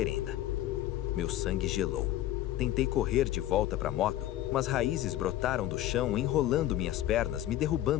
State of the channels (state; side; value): quieter; right; 13.8 dB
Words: Meu sangue gelou. Tentei correr de volta para a moto, mas raízes brotaram do chão, enrolando minhas pernas, me